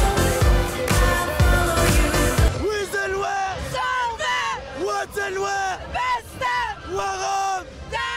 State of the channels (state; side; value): identical; both; correlation 1.00